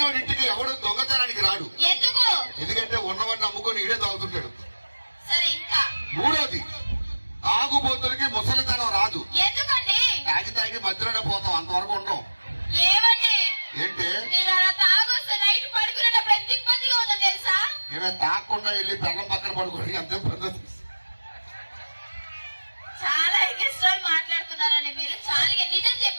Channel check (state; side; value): inverted; both; correlation -1.00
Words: ఇంటికి ఎవడు దొంగతనానికి రాడు. ఎందుకు? ఎందుకంటే ఉన్నవాడిని అమ్ముకొని ఈడే తాగుతుంటాడు. సరే ఇంకా. మూడోది, తాగుబోతులకి ముసలితనం రాదు. ఎందుకండి? తాగి మధ్యలోనే పోతాం, అంతవరకు ఉంటాం. ఏమండి ఏంటి మీరు అలా తాగొస్తే నైట్ పడుకునేటప్పుడు ఎంత ఇబ్బందిగా ఉందో తెలుసా? ఏమైనా తాగకుండా వెళ్ళి పెళ్ళం పక్కన పడుకోండి, అంతే పద్ధతి. చాలా ఇష్టం మాట్లాడుతున్నారని మీరు. చాలా నిజం